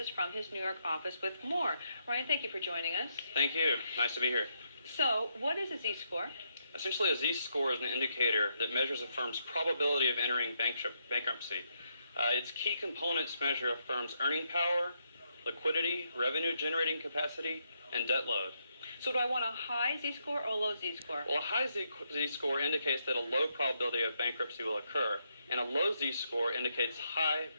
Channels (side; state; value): both; inverted; correlation -0.78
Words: from his New York office with more. Ryan, thank you for joining us. Thank you. Nice to be here. So, what is a Z-score? Essentially, a Z-score is an indicator that measures a firm's probability of entering bankruptcy. Its key components measure a firm's earning power, liquidity, revenue-generating capacity, and debt load. So do I want a high Z-score or a low Z-score? Well, a high Z-score indicates that a low probability of bankruptcy will occur, and a low Z-score indicates high